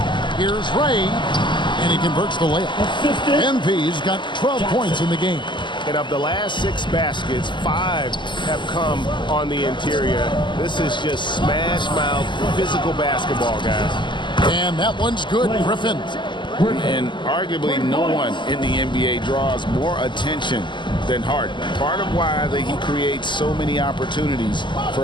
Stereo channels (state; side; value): late; right; 0.22 ms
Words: Here's Ray, and he converts the layup. MP's got 12 points in the game. And of the last 6 baskets, 5 have come on the interior. This is just smash mouth physical basketball, guys. And that one's good, Griffin. And arguably no one in the NBA draws more attention than Harden. Part of why he creates so many opportunities